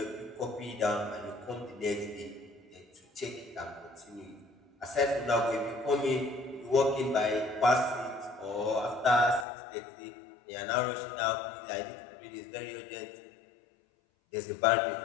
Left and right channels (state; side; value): drops out; right; at 9.5 s